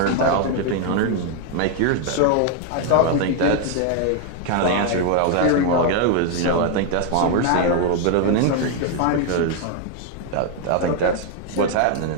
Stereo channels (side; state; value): both; different; correlation 0.01